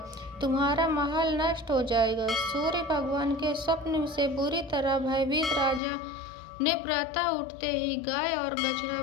तुम्हारा महल नष्ट हो जाएगा। सूर्य भगवान के स्वप्न से बुरी तरह भयभीत राजा ने प्रातः उठते ही गाय और बछड़ा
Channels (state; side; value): drops out; right; at 5.8 s